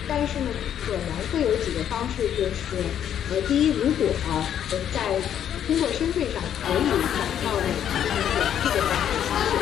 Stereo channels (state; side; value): quieter; right; 9.7 dB